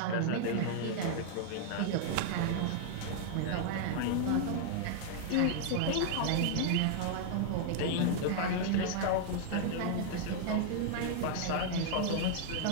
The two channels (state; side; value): different; both; correlation -0.01